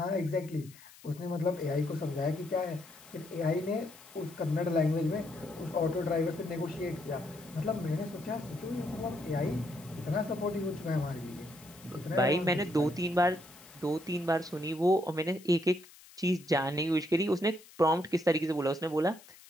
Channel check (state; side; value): noise; left; hiss, 22 dB below the sound